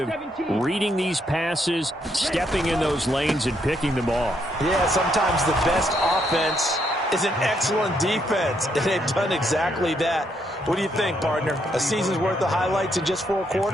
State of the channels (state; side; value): normal; both; correlation 0.75